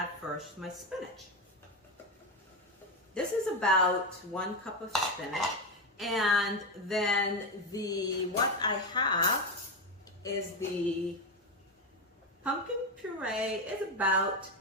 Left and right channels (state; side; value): normal; both; correlation 0.12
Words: first my spinach. This is about 1 cup of spinach. And then what I have is the pumpkin puree is about